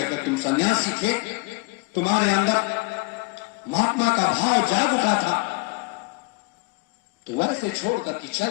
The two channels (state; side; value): quieter; right; 27.7 dB